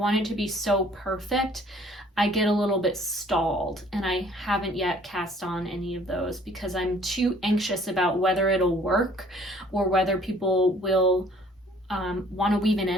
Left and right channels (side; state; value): both; normal; correlation 0.57